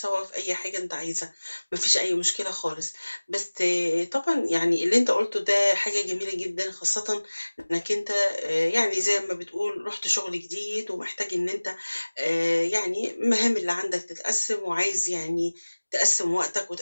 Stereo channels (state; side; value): inverted; both; correlation -1.00